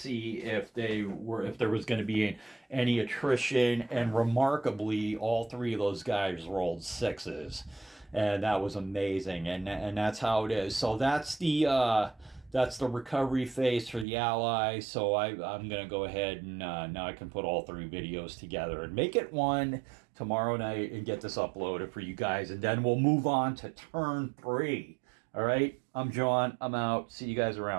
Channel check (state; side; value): drops out; left; at 14.1 s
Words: if there was going to be any attrition, and remarkably, all 3 of those guys rolled 6s, and that was amazing. And that's how it is. So that's the recovery phase for the Allies. So I'm going to go ahead and now I can put all 3 videos together and make it one tomorrow night and get this uploaded for you guys. And then we'll move on to turn 3. All right, I'm John. I'm out. See you guys